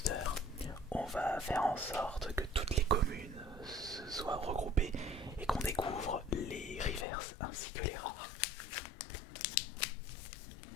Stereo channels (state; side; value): drops out; right; at 7.1 s